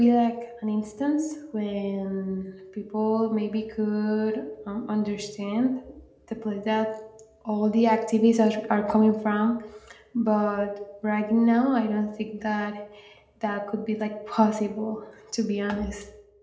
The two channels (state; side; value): identical; both; correlation 1.00